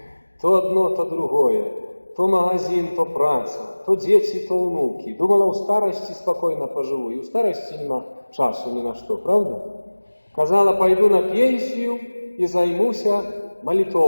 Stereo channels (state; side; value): inverted; both; correlation -1.00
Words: То одно, то другое. То магазин, то праца, то дети, то внуки. Думала, у старости спокойно поживу, и у старости нема часу ни на что, правда? Казала, пойду на пенсию и займуся